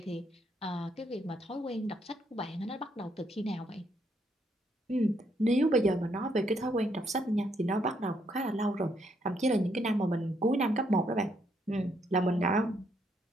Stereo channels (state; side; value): normal; both; correlation 0.74